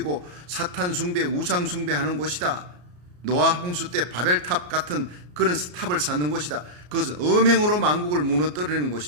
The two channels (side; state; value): left; late; 34 ms